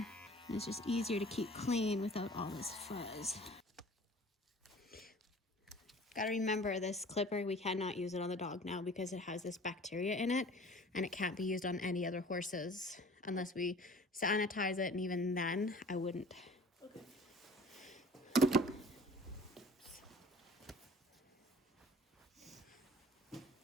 And it's just easier to keep clean without all this fuzz. Gotta remember, this clipper, we cannot use it on the dog now because it has this bacteria in it, and it can't be used on any other horses unless we sanitize it, and even then I wouldn't. Okay.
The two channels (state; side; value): normal; both; correlation 0.46